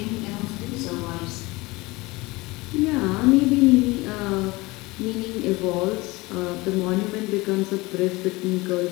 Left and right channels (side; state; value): right; quieter; 22.4 dB